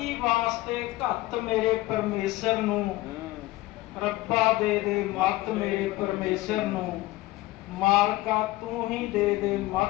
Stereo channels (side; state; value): right; quieter; 18.2 dB